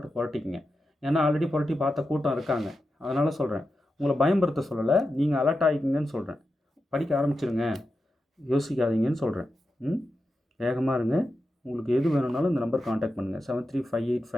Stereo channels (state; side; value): normal; both; correlation 0.89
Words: புரட்டிக்குங்க. ஏன்னா ஆல்ரெடி புரட்டி பார்த்த கூட்டம் இருக்காங்க. அதனால் சொல்கிறேன், உங்களை பயம்படுத்த சொல்லலை, நீங்கள் அலர்ட் ஆகிக்கிங்கன்னு சொல்கிறேன். படிக்க ஆரம்பிச்சிருங்க, யோசிக்காதீங்கன்னு சொல்கிறேன். வேகமாக இருங்க. உங்களுக்கு எது வேணும்னாலும் இந்த நம்பர் காண்டாக்ட் பண்ணுங்கள்,